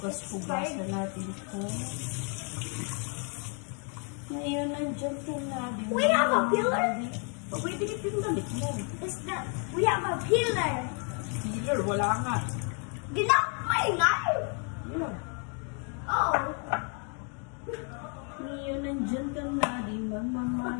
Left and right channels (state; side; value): quieter; right; 39.9 dB